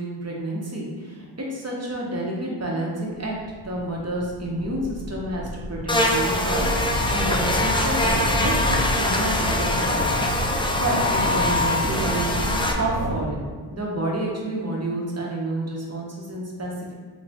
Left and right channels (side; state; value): both; normal; correlation 0.14